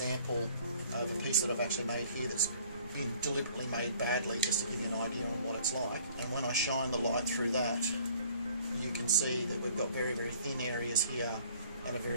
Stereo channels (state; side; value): inverted; both; correlation -0.56